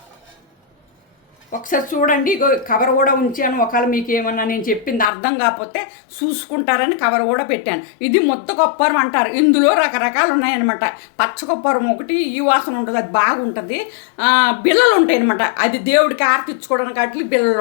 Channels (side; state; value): right; drops out; at 5.1 s